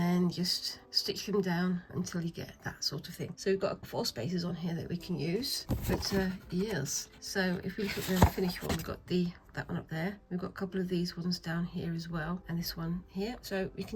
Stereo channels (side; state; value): both; identical; correlation 1.00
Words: just stitch them down until you get that sort of thing. So we've got 4 spaces on here that we can use, but yes. So if we look at the finished one, we've got that one up there. We've got a couple of these ones down here as well, and this one here. So we